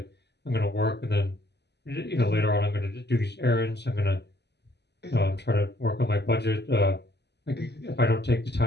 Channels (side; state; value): right; late; 0.49 ms